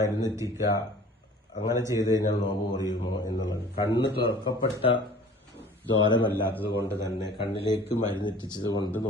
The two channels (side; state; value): both; normal; correlation 0.47